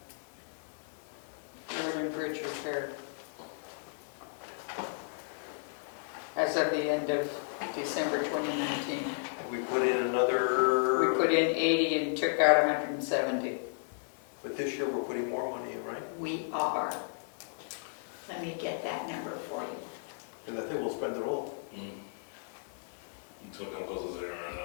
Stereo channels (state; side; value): silent; right; digital silence